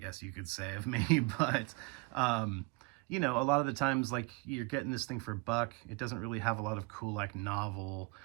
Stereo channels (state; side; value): quieter; left; 27.4 dB